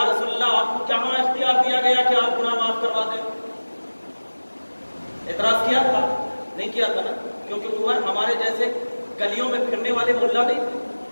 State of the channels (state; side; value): inverted; both; correlation -1.00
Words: رسول اللہ آپ کو کہاں اختیار دیا گیا کہ آپ گناہ معاف کروا دیں. اعتراض کیا تھا؟ نہیں کیا تھا نا، کیونکہ عمر ہمارے جیسے گلیوں میں پھرنے والے ملا نہیں تھے،